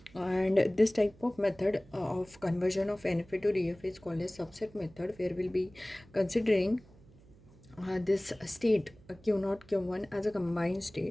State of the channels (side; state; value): right; noise; hum, 25 dB below the sound